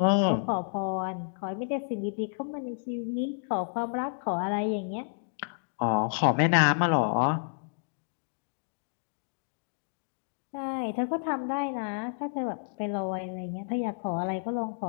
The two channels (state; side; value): silent; right; digital silence